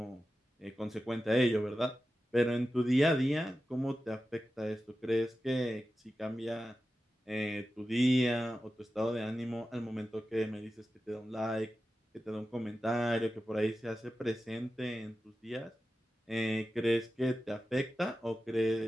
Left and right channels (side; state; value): both; normal; correlation 0.93